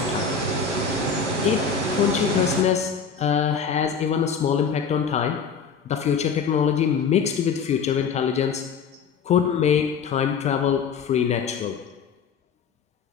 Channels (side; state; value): right; quieter; 6.0 dB